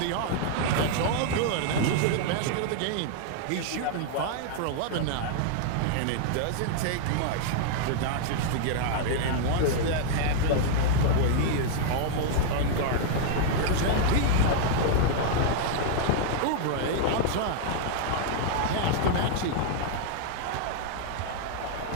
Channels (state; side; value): different; both; correlation -0.01